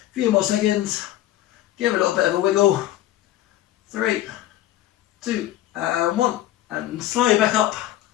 few more seconds, give it a little bit of a wiggle. 3, 2, and 1. And slowly back up,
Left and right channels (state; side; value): quieter; right; 14.0 dB